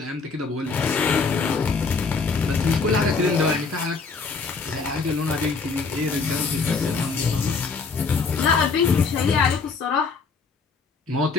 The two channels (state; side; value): quieter; right; 4.7 dB